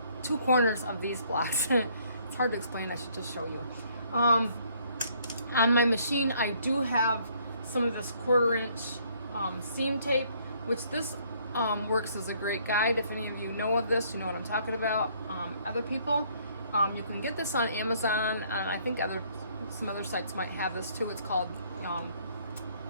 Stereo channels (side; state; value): both; inverted; correlation -0.64